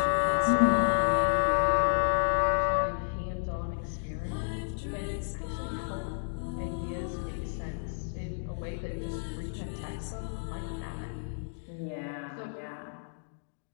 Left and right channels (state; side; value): silent; right; digital silence